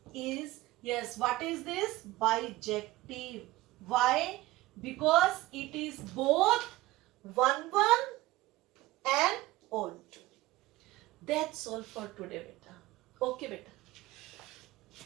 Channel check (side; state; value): left; quieter; 18.0 dB